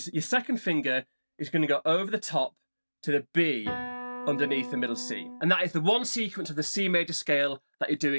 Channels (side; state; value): both; inverted; correlation -1.00